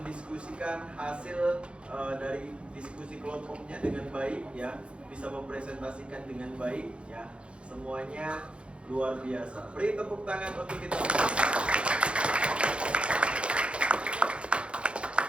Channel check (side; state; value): left; late; 0.058 ms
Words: hasil dari diskusi kelompoknya dengan baik ya, bisa mempresentasikan dengan baik ya. Semuanya luar biasa. Beri tepuk tangan untuk kita.